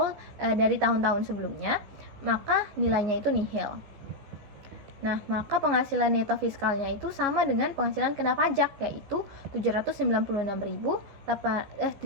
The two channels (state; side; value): late; left; 15 ms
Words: dari tahun-tahun sebelumnya, maka nilainya itu nihil. Nah, maka penghasilan neto fiskalnya itu sama dengan penghasilan kena pajak, yaitu